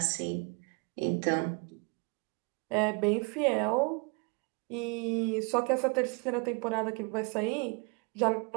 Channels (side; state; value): left; quieter; 33.2 dB